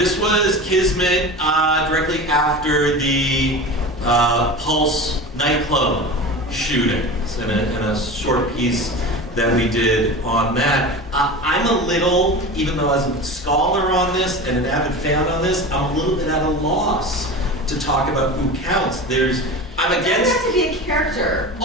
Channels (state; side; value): normal; both; correlation 0.31